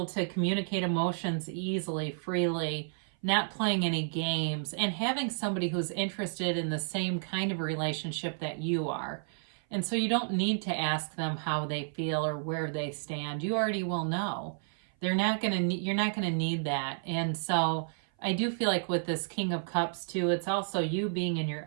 to communicate emotions easily, freely, not playing any games, and having somebody who's interested in the same kind of relationship that you are. And so you don't need to ask them how they feel or where they stand. You already will know. You're not going to need that. And so I do feel like with this King of Cups too, it's also you being in your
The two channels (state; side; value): silent; left; 56 dB below the other